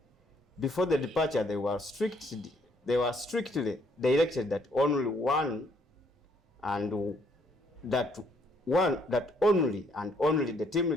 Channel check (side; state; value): both; normal; correlation 0.68